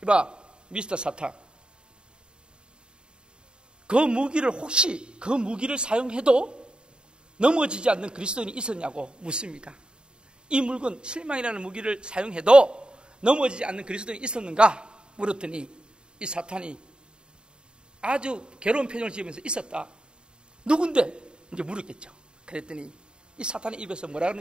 이봐, 미스터 사탄, 그 무기를 혹시 그 무기를 사용해도 넘어지지 않는 그리스도인이 있었냐고 묻습니다. 이 물건, 실망이라는 무기를 사용해도 넘어지지 않는 그리스도인이 있었는가 물었더니 이 사탄이 아주 괴로운 표정을 지으면서 있었다. 누군데? 이제 물었겠죠. 그랬더니 이 사탄의 입에서 뭐라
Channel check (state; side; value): late; left; 0.050 ms